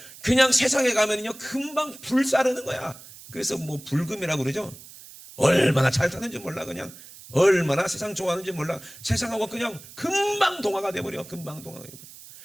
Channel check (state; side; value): noise; right; hiss, 18 dB below the sound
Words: 그냥 세상에 가면요 금방 불사르는 거야. 그래서 뭐 불금이라고 그러죠. 얼마나 잘 사는지 몰라. 그냥 얼마나 세상 좋아하는지 몰라. 세상하고 그냥 금방 동화가 돼버려. 금방 동화가 돼버려.